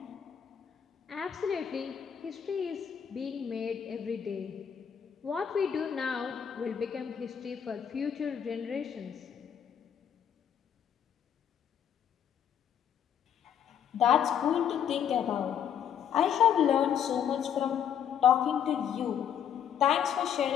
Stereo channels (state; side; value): quieter; right; 8.7 dB